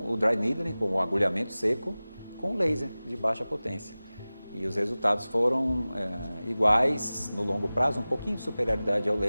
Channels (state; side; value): inverted; both; correlation -0.98